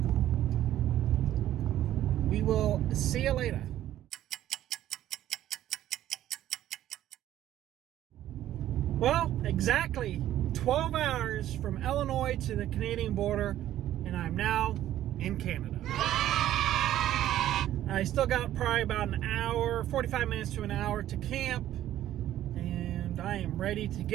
we will see you later. Well, exactly 12 hours from Illinois to the Canadian border, and I'm now in Canada. I still got probably about an hour, 45 minutes to an hour to camp, and I am ready to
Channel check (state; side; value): quieter; left; 12.7 dB